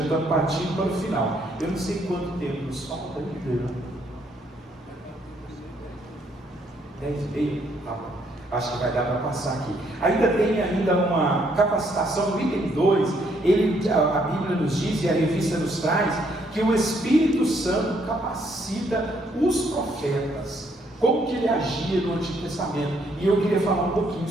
estamos partindo para o final. Eu não sei quanto tempo nos falta ainda. 10:30? Tá bom. Acho que vai dar para passar aqui. Ainda tem uma capacitação no item 2. A Bíblia nos diz, e a revista nos traz, que o Espírito Santo capacita os profetas. Como que ele agia no Antigo Testamento? E eu queria falar um pouquinho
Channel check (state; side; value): normal; both; correlation 0.70